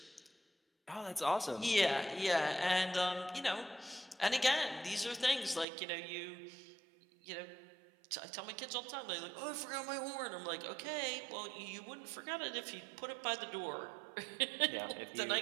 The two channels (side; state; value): left; drops out; at 5.7 s